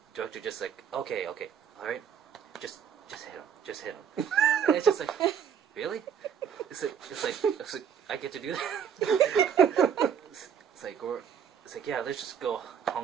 director just like, okay, alright, just hit him. And it's just like, really? It's like I get to do that? It's like, yeah, let's just go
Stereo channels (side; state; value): left; quieter; 7.9 dB